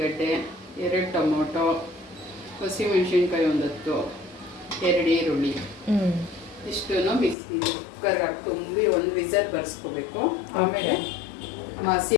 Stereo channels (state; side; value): drops out; right; at 7.4 s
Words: ಗಡ್ಡೆ, 2 ಟೊಮೊಟೊ, ಹಸಿಮೆಣಸಿನ್ಕಾಯಿ 10, 2 ಈರುಳ್ಳಿ. ಇಷ್ಟು ಬಿಸಿ ಕುಕ್ಕರ್ಗೆ ಹಾಕಿ ತುಂಬಿ 1 ವಿಸಲ್ ಬರ್ಸ್ಕೋಬೇಕು. ಆಮೇಲೆ ಮಸಿ